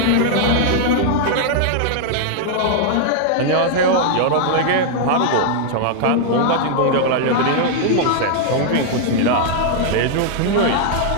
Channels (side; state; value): both; different; correlation -0.01